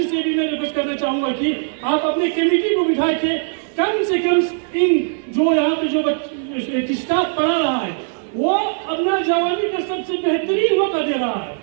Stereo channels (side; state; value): left; silent; 63 dB below the other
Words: से भी मैं रिक्वेस्ट करना चाहूंगा कि आप अपने कमेटी को बिठा के कम से कम इन जो यहाँ पे जो स्टाफ पढ़ा रहा है वो अपना जवानी का सबसे बेहतरीन मौका दे रहा है,